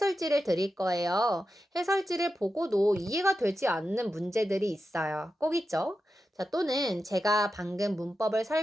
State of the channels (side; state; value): both; normal; correlation 0.90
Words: 드릴 거예요. 해설지를 보고도 이해가 되지 않는 문제들이 있어요. 꼭 있죠? 자, 또는 제가 방금 문법을